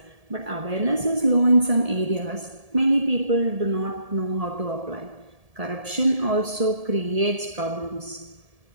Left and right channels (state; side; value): late; left; 1.7 ms